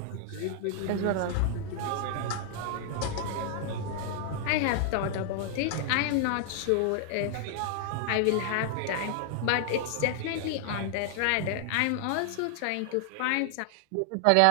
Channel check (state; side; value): different; both; correlation 0.00